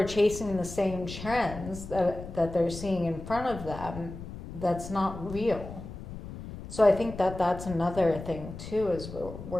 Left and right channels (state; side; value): noise; left; rumble, 11 dB below the sound